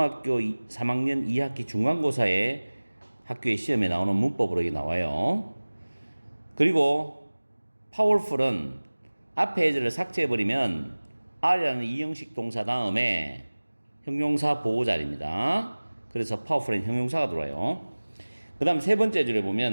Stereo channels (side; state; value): both; inverted; correlation -1.00